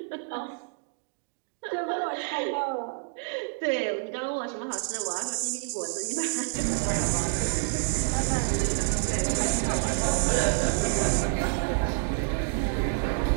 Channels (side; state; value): left; silent; digital silence